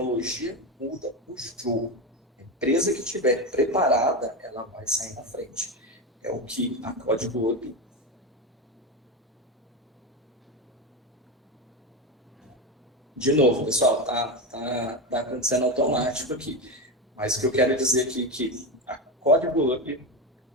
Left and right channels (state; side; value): normal; both; correlation 0.16